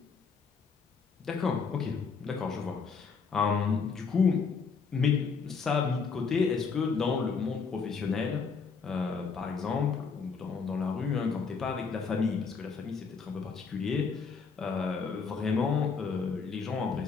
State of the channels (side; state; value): right; quieter; 5.3 dB